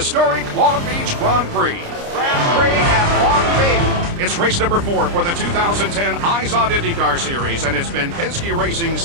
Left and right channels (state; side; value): late; left; 29 ms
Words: Long Beach Grand Prix. Grand Prix at Long Beach. It's race number 4 for the 2010 Eyes on IndyCar Series, and it's been Penske Racing's